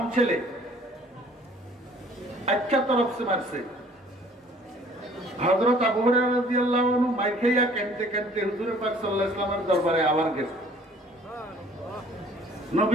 ছেলে, আচ্ছা তরফ সে মারছে। হযরত আবু হুরায়রা রাদিয়াল্লাহু আনহু মাইর খাইয়া কাঁদতে কাঁদতে হুজুর পাক সাল্লাল্লাহু আলাইহি ওয়াসাল্লামের দরবারে আবার গেছে।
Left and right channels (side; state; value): both; normal; correlation 0.55